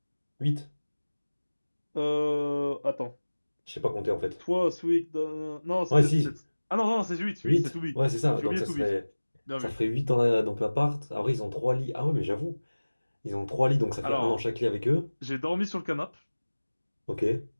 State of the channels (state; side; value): inverted; both; correlation -1.00